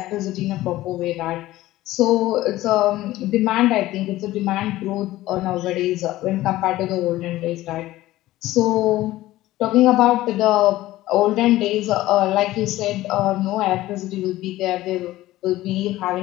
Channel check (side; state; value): right; quieter; 16.3 dB